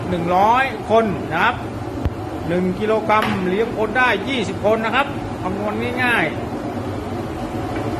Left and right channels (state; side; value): identical; both; correlation 1.00